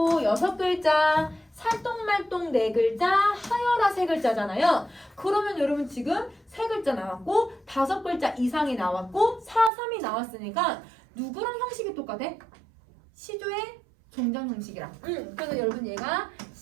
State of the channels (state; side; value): drops out; left; at 9.7 s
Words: 6글자, 살똥말똥 4글자, 하여라 3글자잖아요. 그러면 여러분 지금 3글자 나왔고 5글자 이상이 나왔고 4, 3이 나왔으니까 누구랑 형식이 똑같아? 시조의 종장 형식이랑. 그래서 여러분 얘가